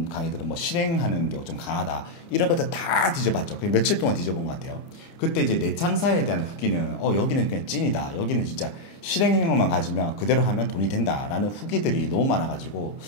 강의들은 뭐 실행하는 게 좀 강하다. 이런 것들 다 뒤져봤죠. 그냥 며칠 동안 뒤져본 것 같아요. 그때 이제 내창사에 대한 후기는 여기는 그냥 찐이다. 여기는 진짜 실행력만 가지면 그대로 하면 돈이 된다라는 후기들이 너무 많아가지고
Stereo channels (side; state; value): right; late; 29 ms